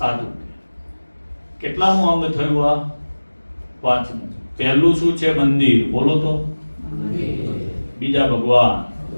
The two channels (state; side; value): inverted; both; correlation -1.00